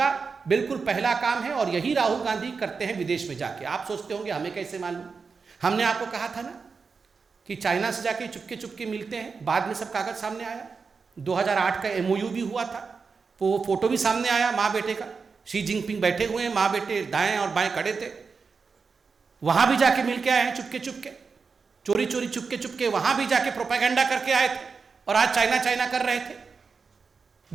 बिल्कुल पहला काम है। और यही राहुल गांधी करते हैं विदेश में जाके। आप सोचते होंगे हमें कैसे मालूम? हमने आपको कहा था ना कि चाइना से जाके चुपके चुपके मिलते हैं, बाद में सब कागज सामने आया। 2008 का MOU भी हुआ था, वो फोटो भी सामने आया माँ बेटे का, शी जिनपिंग बैठे हुए हैं, माँ बेटे दाएं और बाएं खड़े थे। वहां भी जाके मिल के आए हैं चुपके चुपके, चोरी चोरी चुपके चुपके वहां भी जाके प्रोपेगेंडा करके आए थे, और आज चाइना चाइना कर रहे थे,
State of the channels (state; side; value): quieter; left; 5.0 dB